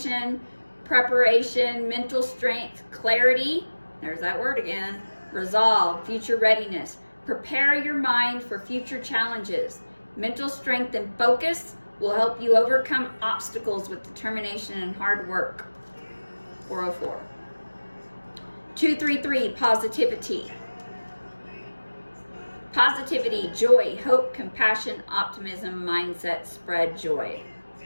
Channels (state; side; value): inverted; both; correlation -1.00